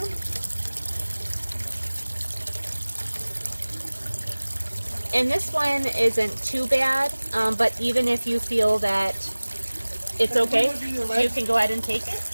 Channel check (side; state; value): both; inverted; correlation -1.00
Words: And this one isn't too bad, but even if you feel that it's okay, you can go ahead and take it.